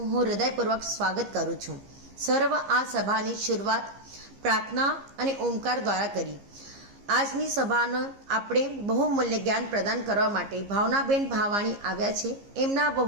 હું હૃદયપૂર્વક સ્વાગત કરું છું. સર્વ આ સભાની શરૂઆત પ્રાર્થના અને ઓમકાર દ્વારા કરી. આજની સભાનો આપણે બહુમૂલ્ય જ્ઞાન પ્રદાન કરવા માટે ભાવનાબેન ભાવાણી આવ્યા છે. એમના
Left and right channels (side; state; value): left; late; 15 ms